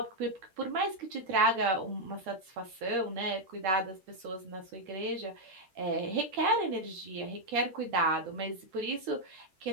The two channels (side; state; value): left; late; 11 ms